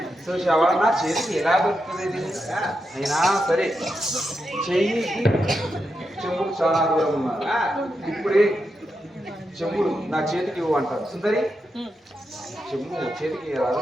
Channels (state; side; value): normal; both; correlation 0.86